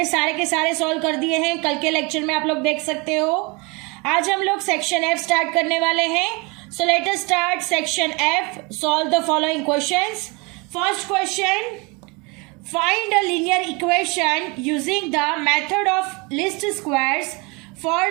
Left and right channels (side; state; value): left; quieter; 28.4 dB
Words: सारे के सारे सॉल्व कर दिए हैं. कल के लेक्चर में आप लोग देख सकते हो. आज हम लोग सेक्शन एफ स्टार्ट करने वाले हैं. सो let us start section F. Solve the following questions. First question, find a linear equation using the method of least squares for